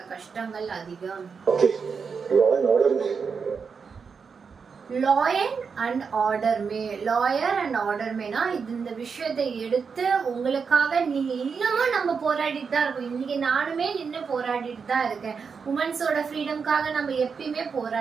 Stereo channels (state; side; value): quieter; left; 5.7 dB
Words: கஷ்டங்கள் அதிகம். லாயர் அண்ட் ஆர்டர் மேனா இந்த விஷயத்தை எடுத்து உங்களுக்காக நீங்க இன்னமும் நம்ம போராடிட்டு தான் இருக்கோம். இன்னைக்கு நானுமே நின்று போராடிட்டு தான் இருக்கேன். உமன்ஸோட ஃப்ரீடம்காக நம்ம எப்பயுமே